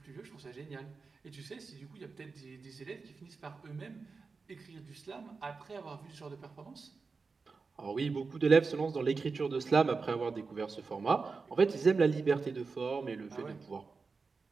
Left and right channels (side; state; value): left; quieter; 4.5 dB